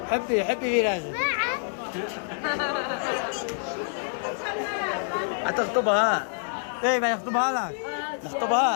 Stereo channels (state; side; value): silent; right; digital silence